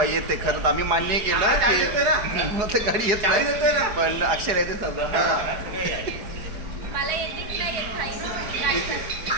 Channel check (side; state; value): left; late; 4.8 ms